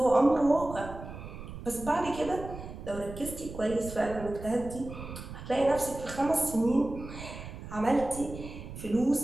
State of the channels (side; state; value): right; noise; rumble, 11 dB below the sound